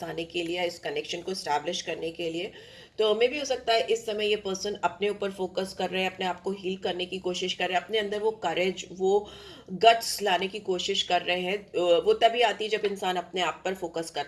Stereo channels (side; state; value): both; identical; correlation 1.00